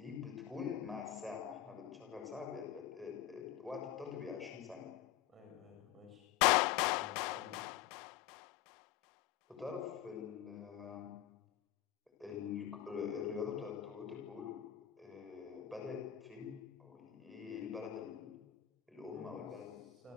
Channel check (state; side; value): quieter; right; 12.1 dB